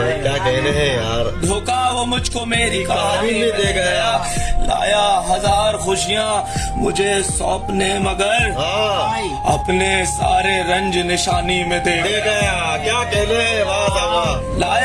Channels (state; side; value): identical; both; correlation 1.00